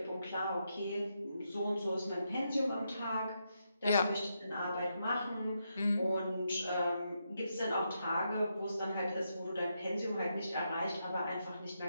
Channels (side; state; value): both; inverted; correlation -0.82